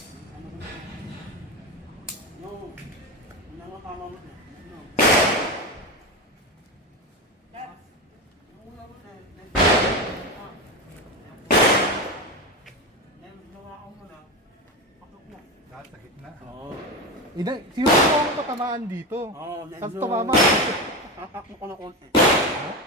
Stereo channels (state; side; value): normal; both; correlation 0.19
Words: Lahat sa gitna. Oo. Ina, sino po ang patamaan dito? Oo, Tapos medyo- tumama. Akak mo ko na konti. Ha?